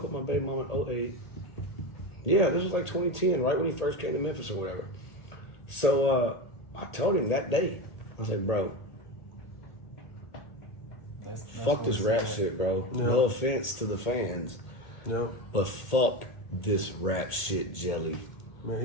up my baby mama in 08. Yeah, this was like 2010, right when he first came to Memphis or whatever. So I told him that day, I was like, bro, fuck this rap shit, bro. Yeah. No offense to the fans. Yeah. But fuck this rap shit, Jelly.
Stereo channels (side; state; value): right; late; 1.8 ms